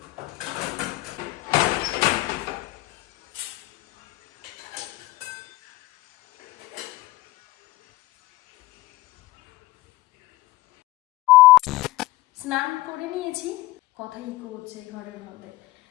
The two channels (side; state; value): right; quieter; 18.5 dB